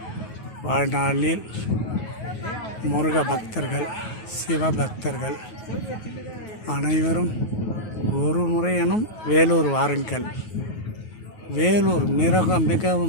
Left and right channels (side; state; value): right; late; 9.4 ms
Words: வாழ்நாளில் முருக பக்தர்கள், சிவபக்தர்கள் அனைவரும் ஒரு முறையனும் வேலூர் வாருங்கள். வேலூர்